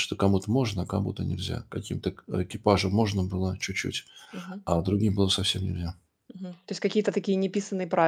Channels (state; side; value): identical; both; correlation 1.00